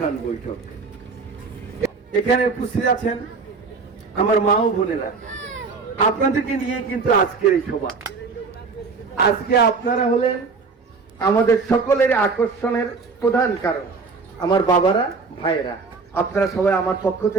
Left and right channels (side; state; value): left; quieter; 4.6 dB